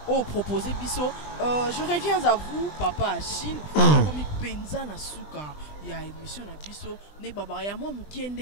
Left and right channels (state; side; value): late; right; 20 ms